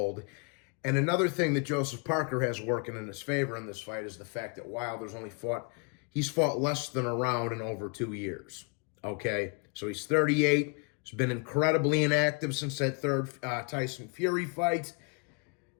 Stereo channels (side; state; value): right; quieter; 35.5 dB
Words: And another thing that Joseph Parker has working in his favor in this fight is the fact that Wilder's he's fought less than a round in over 2 years. Okay? So he's 38. He's been incredibly inactive since that third Tyson Fury fight,